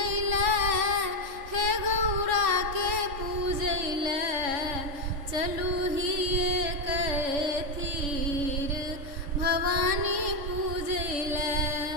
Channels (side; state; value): left; late; 3.5 ms